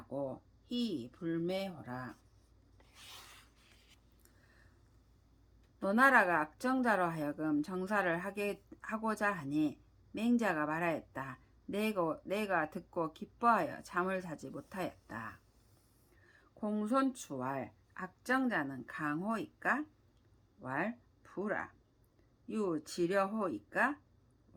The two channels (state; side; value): identical; both; correlation 1.00